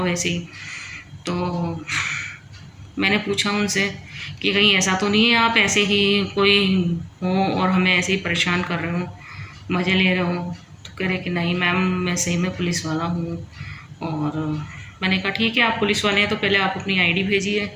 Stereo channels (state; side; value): identical; both; correlation 1.00